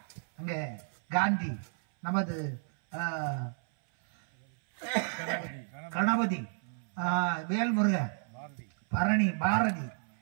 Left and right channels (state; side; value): silent; left; 56 dB below the other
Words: அங்கே காந்தி, நமது கணபதி, வேல்முருகன், பரணி, பாரதி